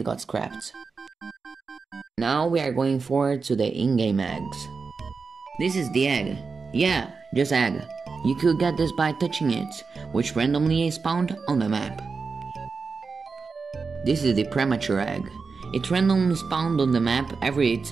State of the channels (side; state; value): left; quieter; 4.8 dB